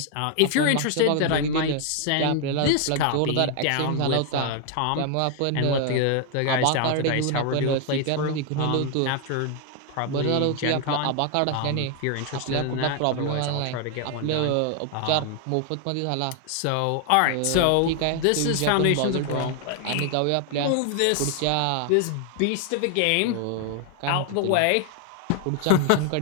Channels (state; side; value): different; both; correlation 0.00